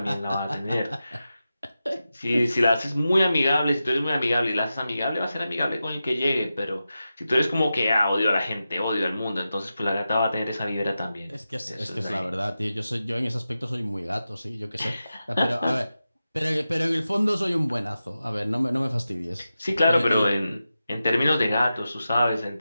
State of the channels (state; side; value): inverted; both; correlation -0.92